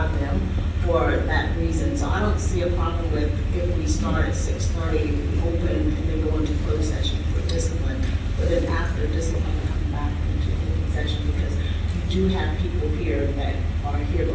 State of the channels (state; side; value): identical; both; correlation 1.00